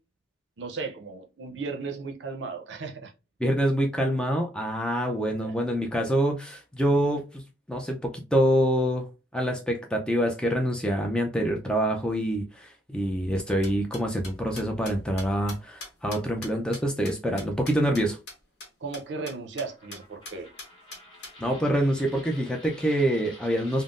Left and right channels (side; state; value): both; normal; correlation 0.73